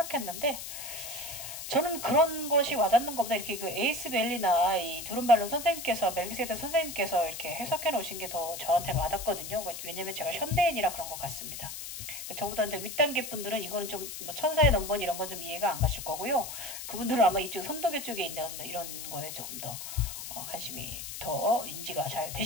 저는 그런 것이 와닿는 것보다 이렇게 에이스밸리나 이 두른발론 선생님께서 멜기세덱 선생님께서 이렇게 해석해 놓으신 게 더 저한테는 와닿거든요. 왜냐면 제가 현대인이라 그런 것 같습니다. 저보다 이제 윗단계 분들은 이거는 좀 천사의 넘버 이런 건 좀 이해가 안 가실 거고요. 그분들은 아마 이쪽 선도계 쪽에 있는 이런 거에 조금 더 관심이 더 인지가 잘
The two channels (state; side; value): noise; left; hiss, 8 dB below the sound